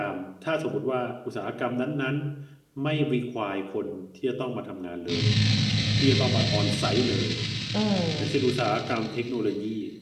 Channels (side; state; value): both; identical; correlation 1.00